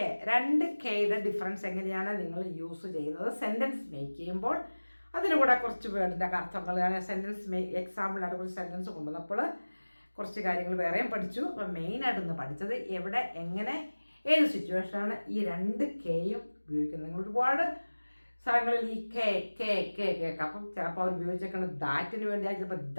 രണ്ട് കെയുടെ ഡിഫറൻസ് എങ്ങനെയാണ് നിങ്ങൾ യൂസ് ചെയ്യുന്നത് സെൻറ്റൻസ് മേക്ക് ചെയ്യുമ്പോൾ. അതിന് കൂടെ കുറച്ച് വേർഡിൻ്റെ അർത്ഥങ്ങൾ, ഞാൻ സെൻറ്റൻസ് എക്സാമ്പിളായിട്ട് കുറച്ച് സെൻറ്റൻസ് കൊണ്ടുവന്നപ്പോൾ കുറച്ച് കാര്യങ്ങൾ വേറെയും പഠിച്ചു. അപ്പോൾ മെയിനായിട്ടൊന്ന് പഠിച്ചത് എവിടെ, എങ്ങനെ, ഏത് സിറ്റുവേഷനാണ് ഈ രണ്ട് കെയും ഉപയോഗിക്കുന്നത്. നിങ്ങൾ ഒരുപാട് സ്ഥലങ്ങളിൽ ഈ കെ കേൾക്കാം. അപ്പം ചിലപ്പോൾ അവർ ഉപയോഗിച്ചേക്കുന്നത് ദാറ്റിന് വേണ്ടിയായി, ചിലപ്പോൾ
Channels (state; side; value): inverted; both; correlation -1.00